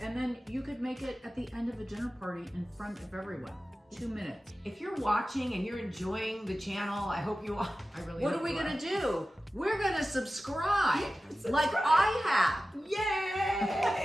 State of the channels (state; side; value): normal; both; correlation 0.95